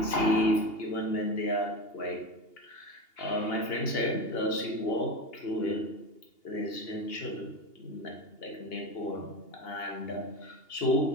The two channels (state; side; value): late; right; 2.8 ms